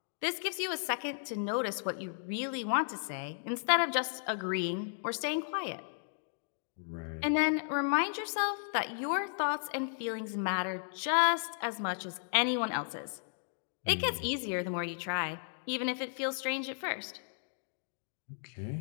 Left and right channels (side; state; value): right; silent; digital silence